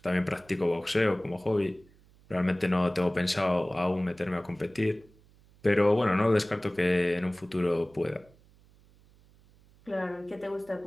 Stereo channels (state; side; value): noise; right; hum, 28 dB below the sound